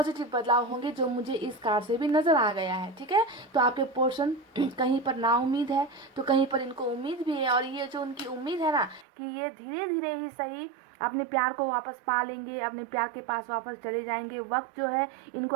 बदलाव होंगे जो मुझे इस कार्ड से भी नज़र आ गया है। ठीक है, तो आपके पोर्शन कहीं पर ना उम्मीद है तो कहीं पर इनको उम्मीद भी है, और ये जो उनकी उम्मीद है ना कि ये धीरे धीरे ही सही अपने प्यार को वापस पा लेंगे, अपने प्यार के पास वापस चले जाएंगे, वक्त जो है इनको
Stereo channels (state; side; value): drops out; left; at 9.1 s